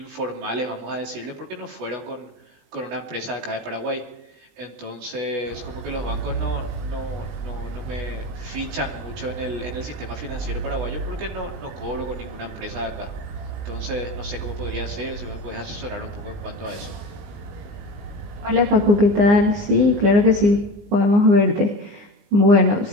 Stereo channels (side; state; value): left; late; 20 ms